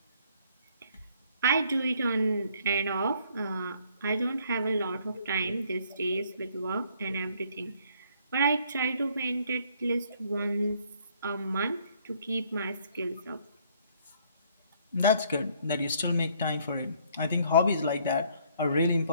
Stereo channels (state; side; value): inverted; both; correlation -0.64